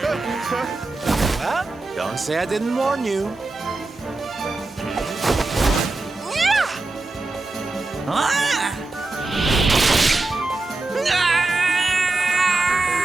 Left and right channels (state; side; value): quieter; left; 3.2 dB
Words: Well, don't say I didn't warn you.